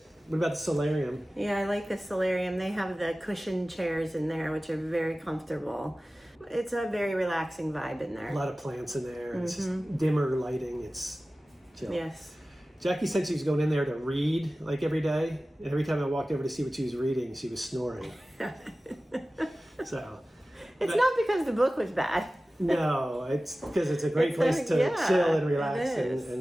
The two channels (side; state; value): both; normal; correlation 0.96